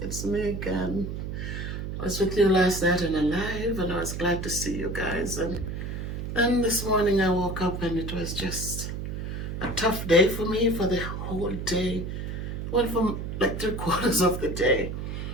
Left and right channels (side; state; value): right; noise; hum, 5 dB below the sound